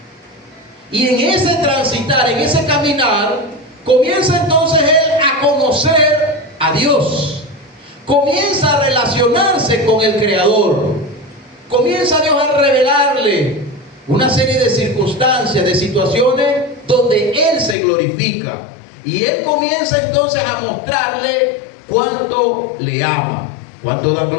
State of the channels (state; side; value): drops out; right; at 17.8 s